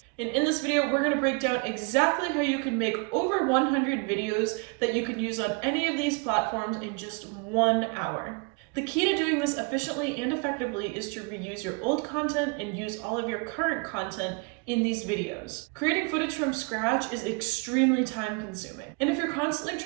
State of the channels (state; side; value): quieter; left; 31.8 dB